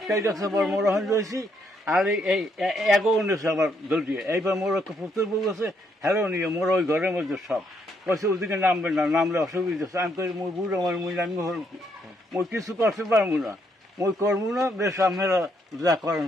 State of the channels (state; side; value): normal; both; correlation 0.73